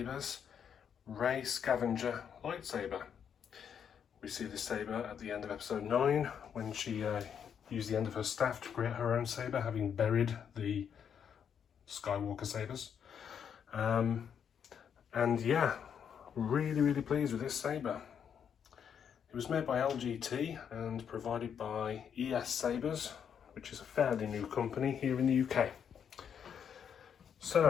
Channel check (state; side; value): quieter; right; 7.9 dB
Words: REY Scavenger Lightsaber. We see this saber at the end of episode 9 when she used the end of her staff to create her own saber, having buried the Skywalker sabers. And yeah, really pleased with this saber. It was made by LGT and provided by Sabers, which is a fairly new company here in the UK.